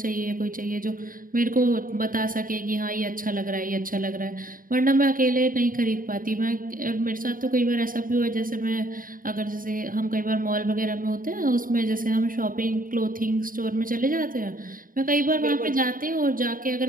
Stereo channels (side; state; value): left; late; 0.40 ms